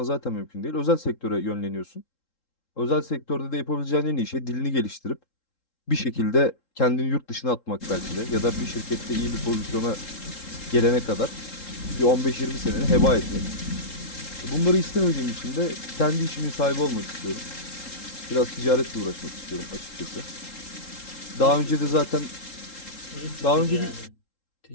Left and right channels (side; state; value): right; late; 3.7 ms